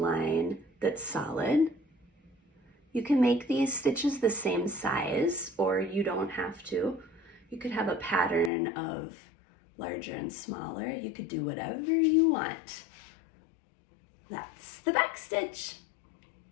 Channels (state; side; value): drops out; right; at 8.5 s